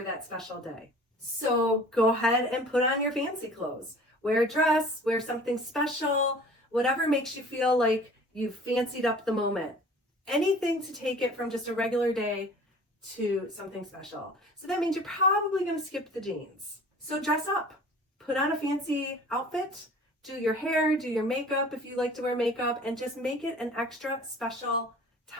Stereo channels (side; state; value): both; normal; correlation 0.46